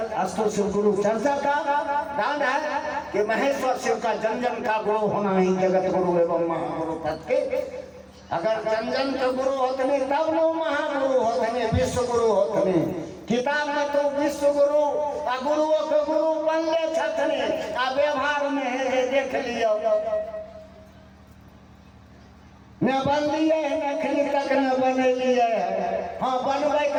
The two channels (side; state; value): both; identical; correlation 1.00